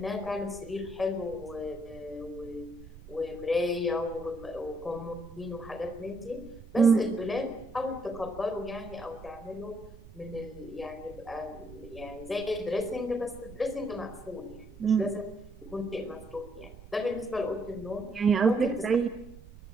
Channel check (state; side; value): noise; right; rumble, 17 dB below the sound